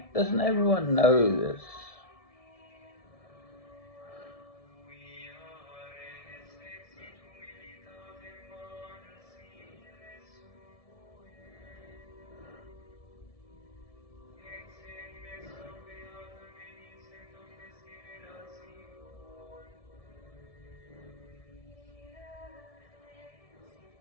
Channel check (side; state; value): right; late; 1.7 ms